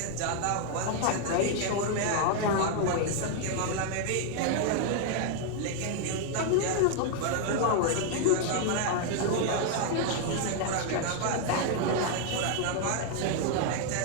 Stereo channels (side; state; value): both; different; correlation 0.00